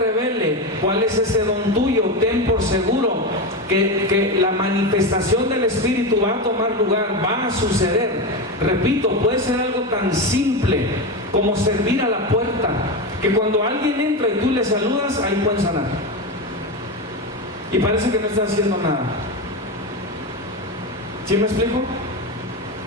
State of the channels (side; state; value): both; normal; correlation 0.17